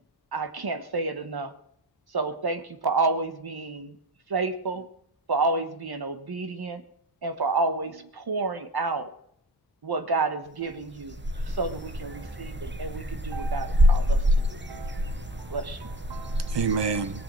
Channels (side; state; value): both; normal; correlation 0.29